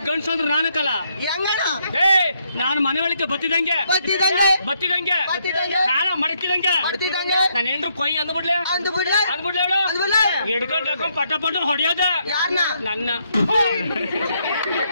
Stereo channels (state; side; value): inverted; both; correlation -0.74